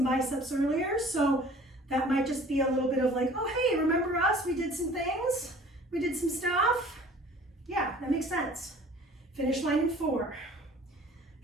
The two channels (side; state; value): both; normal; correlation 0.49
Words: biceps earlier, so that might just be a little bit of like, oh, hey, remember us? We did some things. We did some stuff. Yeah, that makes sense. Finish line in 4,